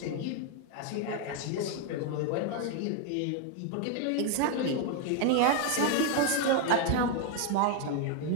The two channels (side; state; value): both; different; correlation 0.01